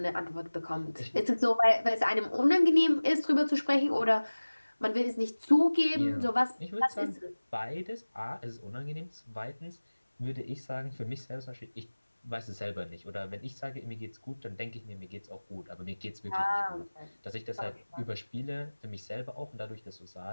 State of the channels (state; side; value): inverted; both; correlation -1.00